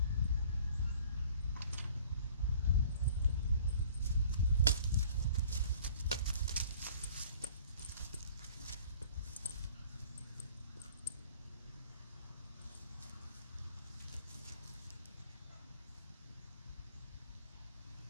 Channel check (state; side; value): inverted; both; correlation -0.51